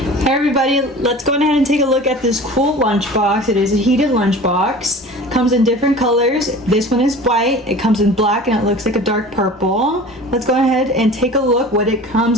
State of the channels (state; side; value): normal; both; correlation 0.40